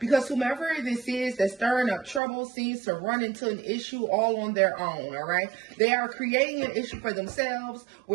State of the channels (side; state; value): left; drops out; at 2.2 s